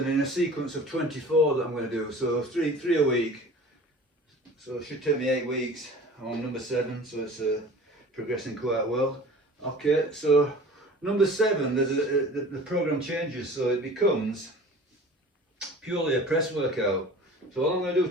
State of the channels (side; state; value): both; normal; correlation 0.42